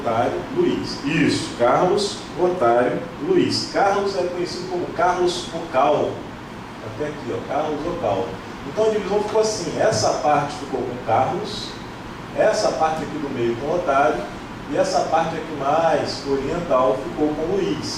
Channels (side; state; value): both; identical; correlation 1.00